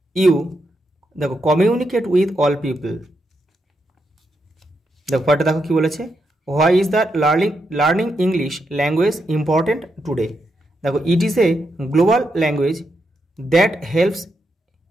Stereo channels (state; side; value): normal; both; correlation 0.83